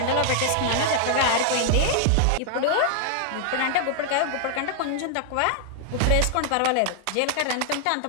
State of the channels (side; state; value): both; different; correlation -0.01